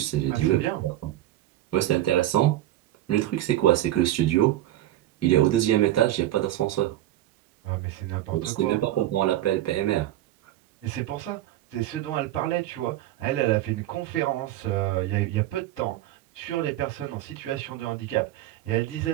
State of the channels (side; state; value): left; quieter; 14.2 dB